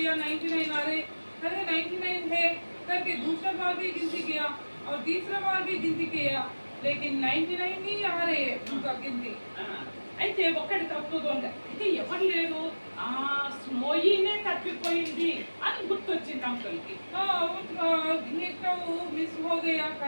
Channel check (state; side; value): inverted; both; correlation -1.00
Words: 99 आ रहे, अरे 99 है करके दूसरा बार भी गिनती किया और तीसरा बार भी गिनती किया, लेकिन 99 ही आ रहे उनका गिनती। అయితే ఒక్కటి తక్కువగా ఉంది. అయితే ఎవరు లేరు, స్నోయీనే తప్పిపోయింది అని గుర్తొచ్చింది అంకుల్కి. एक तो मिस हो गया